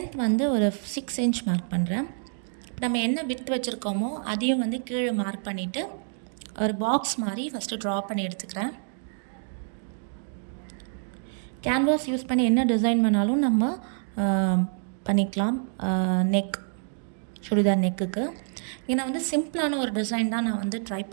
வந்து ஒரு 6 இன்ச் மார்க் பண்ணுறேன். நம்ம என்ன விட்த் வச்சுருக்கோமோ அதையும் வந்து கீழே மார்க் பண்ணிவிட்டு ஒரு பாக்ஸ் மாதிரி ஃபஸ்ட்டு ட்ரா பண்ணி எடுத்துக்கிறேன். கேன்வாஸ் யூஸ் பண்ணி என்ன டிசைன் பண்ணாலும் நம்ம பண்ணிக்கலாம். சுடிதார் நெக்குக்கு ஏன்னா வந்து சிம்பிளான ஒரு டிசைன் தான் நான் வந்து ட்ரை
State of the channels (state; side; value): silent; left; 60 dB below the other